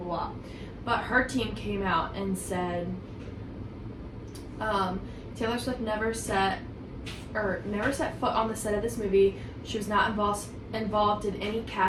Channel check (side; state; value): both; identical; correlation 1.00